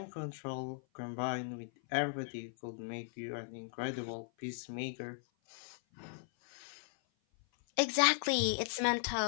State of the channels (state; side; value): silent; right; 53 dB below the other